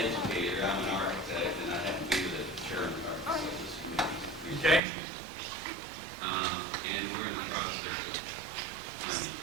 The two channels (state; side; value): drops out; left; at 4.8 s